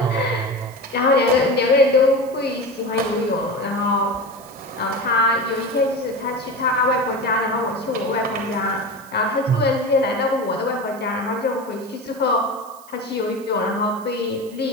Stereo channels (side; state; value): right; noise; hiss, 23 dB below the sound